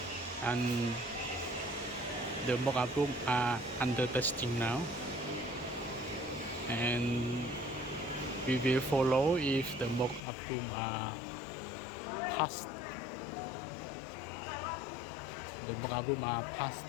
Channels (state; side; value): drops out; right; at 10.2 s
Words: and the mock-up room are under testing now, and we will follow if the mock-up room are passed. The mock-up room are passed